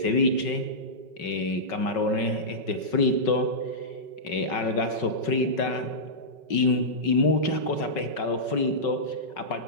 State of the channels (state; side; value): late; right; 5.4 ms